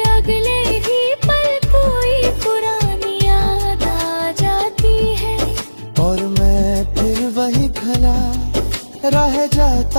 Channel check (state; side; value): inverted; both; correlation -1.00